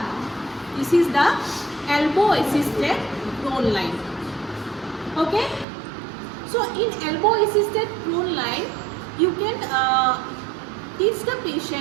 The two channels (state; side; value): drops out; left; at 5.7 s